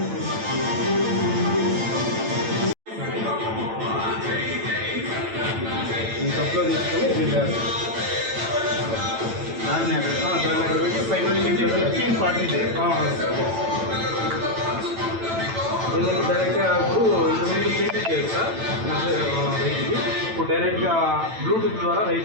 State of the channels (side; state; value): left; late; 9.0 ms